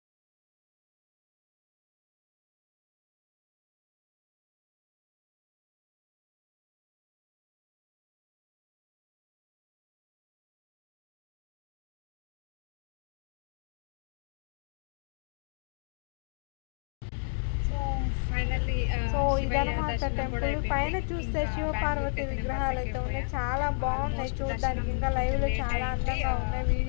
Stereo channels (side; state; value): right; silent; digital silence